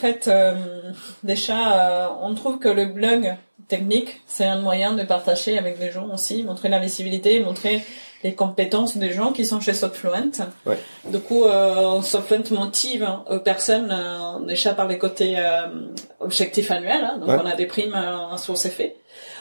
déjà, on trouve que le blog technique, c'est un moyen de partager avec des gens aussi, montrer la visibilité, montrer les compétences des gens qui sont chez Softfluent. Ouais. Du coup, Softfluent motive personnes déjà par les côtés objectifs annuels. Hein, donc, on a des primes sur ces faits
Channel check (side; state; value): both; inverted; correlation -1.00